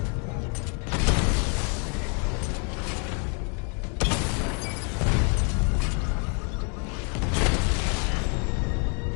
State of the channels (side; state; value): right; quieter; 38.0 dB